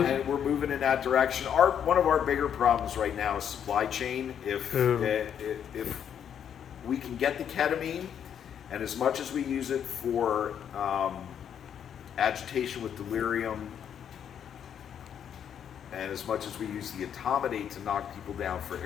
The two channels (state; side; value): quieter; right; 8.7 dB